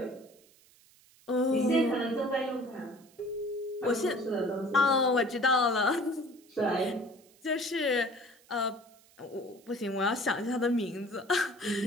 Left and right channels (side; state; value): right; noise; hiss, 28 dB below the sound